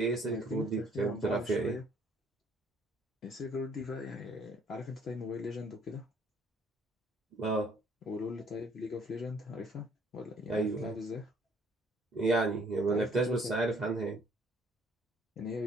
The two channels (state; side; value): normal; both; correlation 0.61